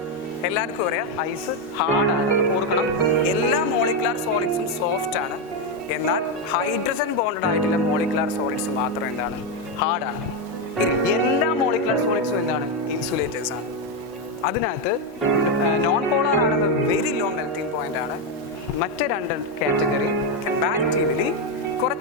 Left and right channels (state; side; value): normal; both; correlation 0.06